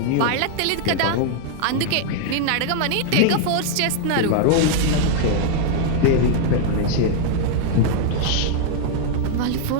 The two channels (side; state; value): both; different; correlation 0.00